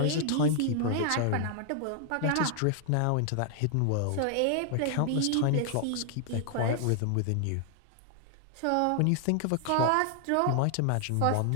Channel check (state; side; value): different; both; correlation 0.00